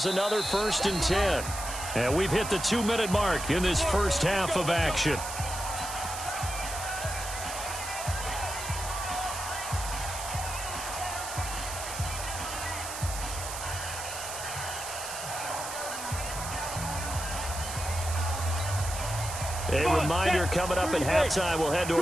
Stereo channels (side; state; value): right; noise; hiss, 7 dB below the sound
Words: another 1st and 10. And we've hit the 2-minute mark in this first half of action. A reminder coming up at halftime, we'll head to